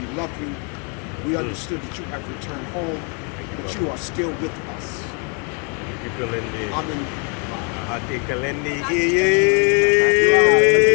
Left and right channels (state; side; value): quieter; right; 36.9 dB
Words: love you. We understood that you have returned home, but you are still with us. Thank you, Kalindi. Amen. Hati Kalindi Kalindi.